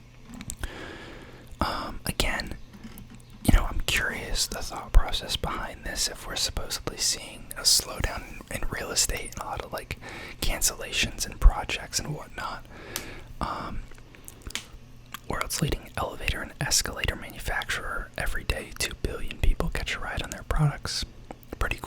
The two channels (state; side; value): identical; both; correlation 1.00